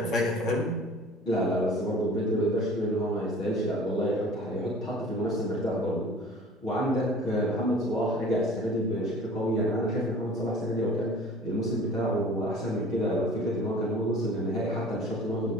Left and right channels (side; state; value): both; normal; correlation 0.45